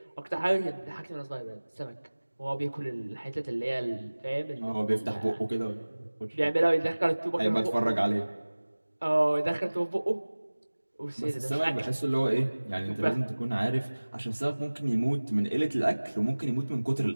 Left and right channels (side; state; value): both; inverted; correlation -1.00